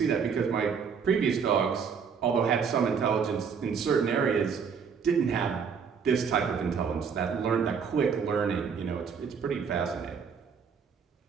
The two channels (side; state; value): left; quieter; 6.3 dB